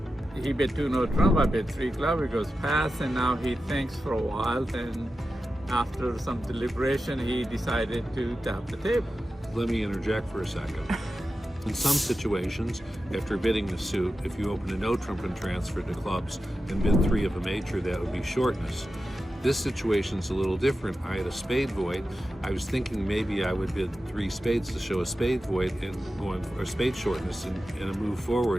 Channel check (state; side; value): normal; both; correlation 0.92